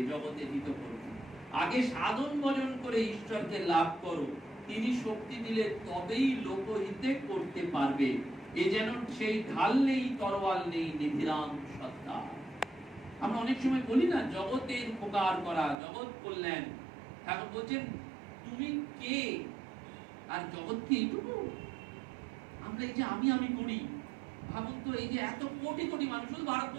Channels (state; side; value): drops out; left; at 15.8 s